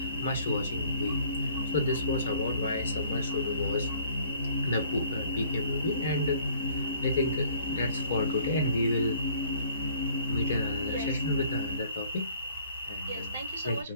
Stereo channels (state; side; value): inverted; both; correlation -0.57